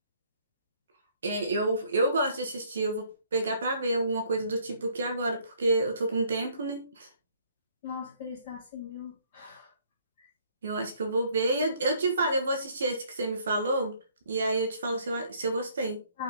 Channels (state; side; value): inverted; both; correlation -0.63